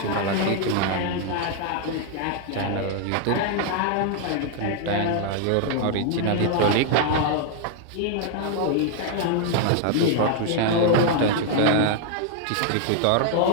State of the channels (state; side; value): different; both; correlation 0.00